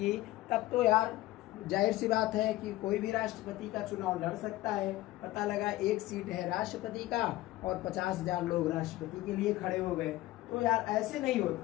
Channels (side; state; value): right; quieter; 16.9 dB